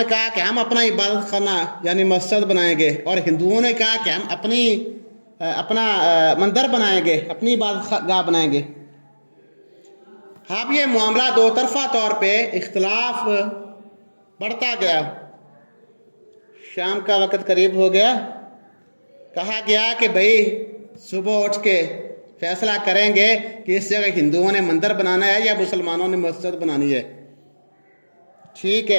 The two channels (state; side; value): inverted; both; correlation -1.00